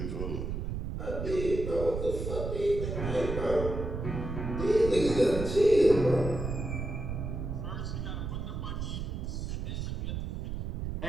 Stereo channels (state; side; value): noise; right; rumble, 4 dB below the sound